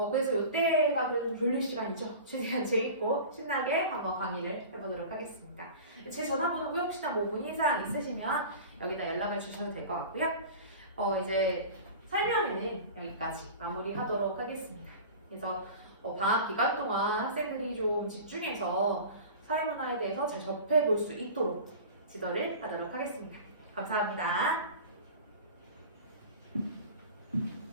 이때가 그래도 졸릴 시간이죠. 최대한 재밌고 신나게 한번 강의를 해보도록 하겠습니다. 제 전화번호고 혹시나 뭐 문의사항 있으시면 여기다 연락을 주셔도 될 것 같고요. 이제 설명은 여기까지 마무리하도록 하겠습니다. 그래서 방학 기간 동안 학생들이 좀 집중해서 사회문화에 대해서 잘 접해볼 수 있도록 지도를 하도록 하겠습니다. 감사합니다.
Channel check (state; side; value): inverted; both; correlation -0.36